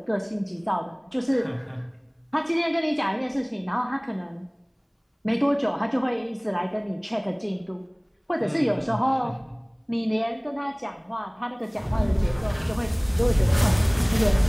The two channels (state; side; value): identical; both; correlation 1.00